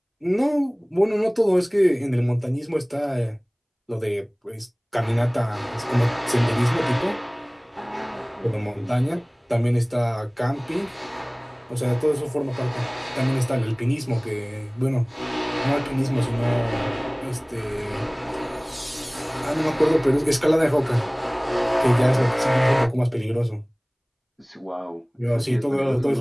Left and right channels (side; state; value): both; identical; correlation 1.00